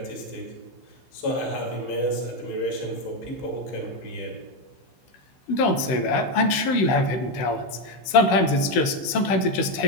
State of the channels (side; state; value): right; late; 16 ms